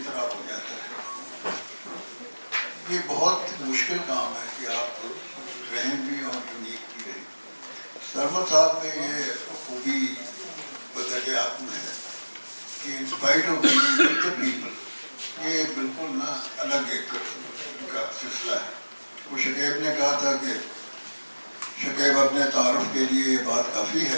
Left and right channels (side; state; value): both; inverted; correlation -1.00